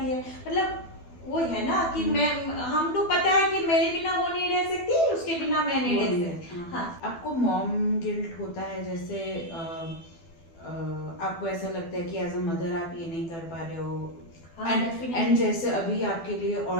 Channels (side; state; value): right; late; 12 ms